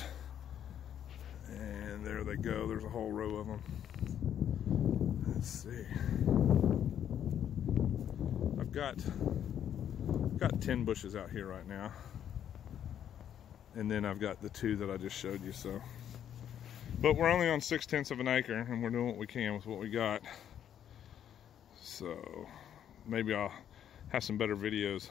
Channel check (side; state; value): right; quieter; 9.7 dB